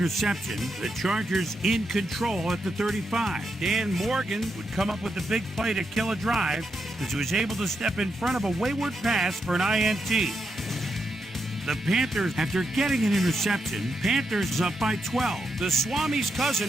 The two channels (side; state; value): both; normal; correlation 0.83